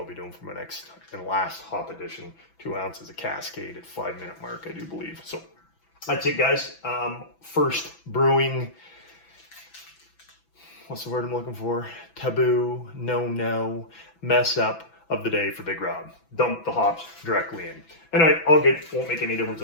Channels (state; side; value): late; right; 6.0 ms